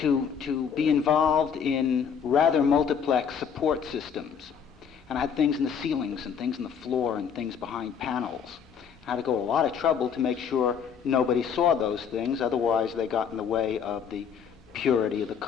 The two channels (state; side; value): quieter; right; 7.1 dB